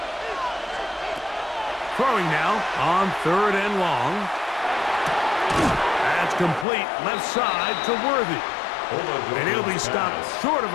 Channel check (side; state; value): right; drops out; at 6.7 s